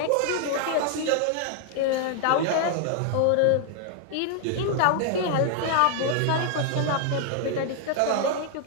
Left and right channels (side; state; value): both; different; correlation 0.00